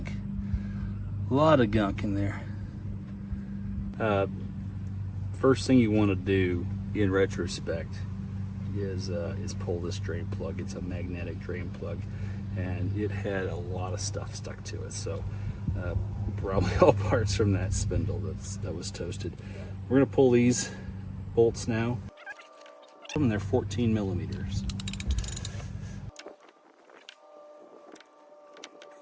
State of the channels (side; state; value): both; identical; correlation 1.00